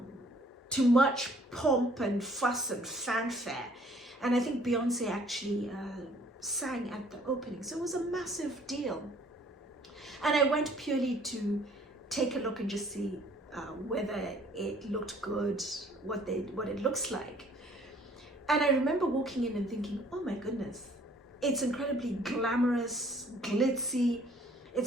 to much pomp and fuss and fanfare. And I think Beyonce actually sang at the opening. So it was a massive deal. And I went purely to take a look and just see whether it looked good, what it looks like. And I remember walking in and thinking, oh my goodness, it's incredibly glamorous, glitzy.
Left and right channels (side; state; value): both; normal; correlation 0.58